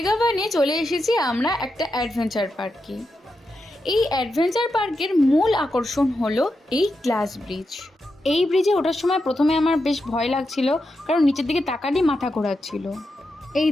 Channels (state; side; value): normal; both; correlation 0.87